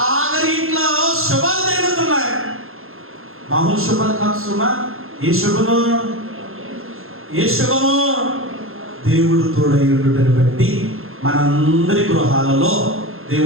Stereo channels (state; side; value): late; left; 0.61 ms